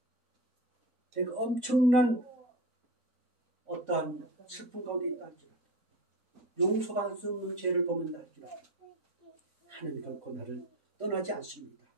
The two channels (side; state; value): both; normal; correlation 0.30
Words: 내가 엄청난 어떠한 슬픔 가운데 있다 할지라도 용서받을 수 없는 죄를 범한다 할지라도 하나님 결코 나를 떠나지 않습니다.